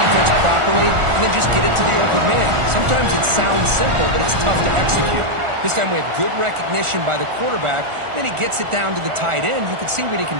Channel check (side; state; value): left; late; 1.4 ms